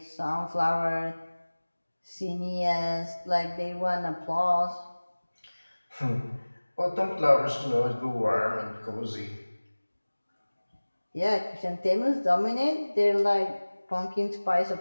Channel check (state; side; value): inverted; both; correlation -1.00